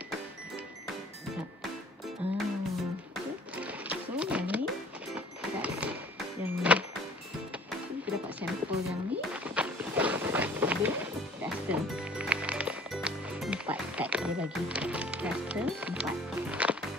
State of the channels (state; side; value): normal; both; correlation 0.52